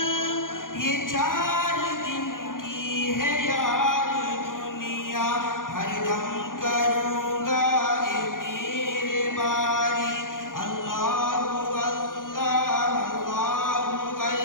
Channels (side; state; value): right; late; 0.89 ms